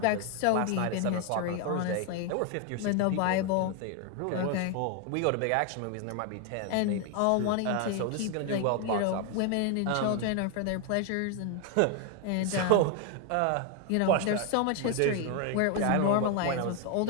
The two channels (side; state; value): both; different; correlation 0.01